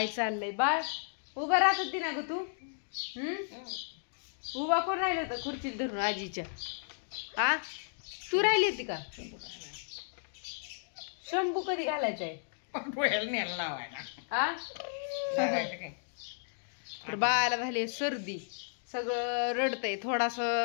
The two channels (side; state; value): right; silent; digital silence